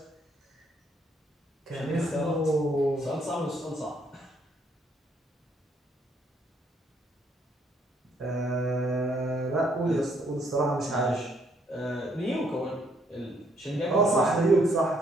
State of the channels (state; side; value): normal; both; correlation 0.69